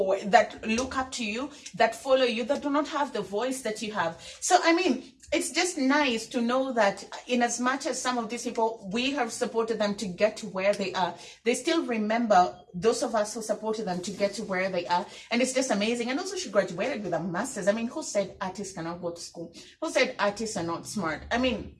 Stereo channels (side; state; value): both; identical; correlation 1.00